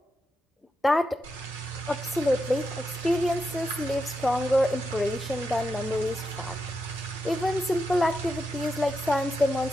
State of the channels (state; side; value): normal; both; correlation 0.86